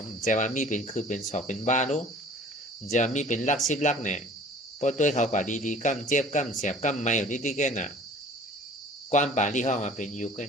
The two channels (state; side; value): normal; both; correlation 0.48